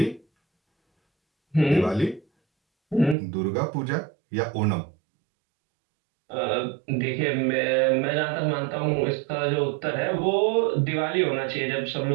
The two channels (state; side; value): drops out; left; at 3.2 s